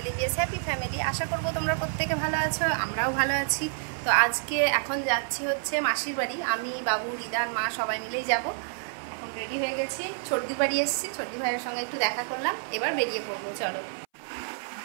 EVS happy family. আশা করবো তোমরা প্রত্যেকে ভালো আছো, আমরাও ভালো আছি। তো আজকে এখন যাচ্ছি হচ্ছে মাসির বাড়ি। আমি, বাবু, রিদান, মা সবাই মিলেই যাব। এখন রেডি হয়ে গেছি, ছর্দির বাড়ি এসেছি, ছর্দি ভাইয়ের সঙ্গে একটু দেখা করলাম, এবার বেরিয়ে পড়বো। চলো,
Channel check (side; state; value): left; silent; 59 dB below the other